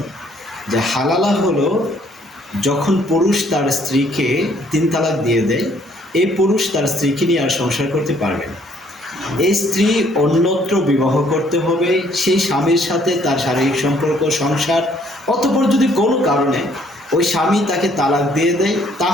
যে হালালা হলো যখন পুরুষ তার স্ত্রীকে 3 তালাক দিয়ে দেয়, এই পুরুষ তার স্ত্রীকে নিয়ে আর সংসার করতে পারবে না। এই স্ত্রী অন্যত্র বিবাহ করতে হবে, সেই স্বামীর সাথে তার শারীরিক সম্পর্ক, সংসার, অতঃপর যদি কোনো কারণে ওই স্বামী তাকে তালাক দিয়ে দেয়,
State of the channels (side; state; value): both; normal; correlation 0.64